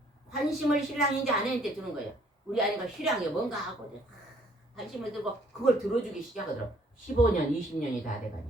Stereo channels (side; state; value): both; normal; correlation 0.62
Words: 관심을 신랑이 이제 아내한테 주는 거예요. 우리 아내가 신랑이 뭔가 하고 관심을 들고 그걸 들어주기 시작하더라고. 15년 20년이 다